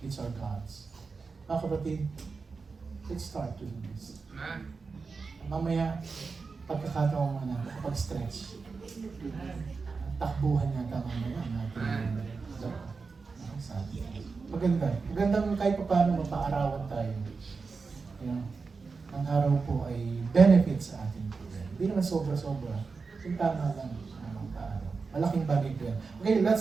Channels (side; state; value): left; quieter; 4.6 dB